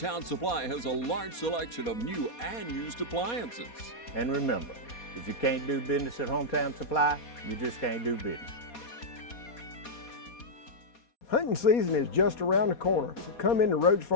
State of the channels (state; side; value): late; right; 4.2 ms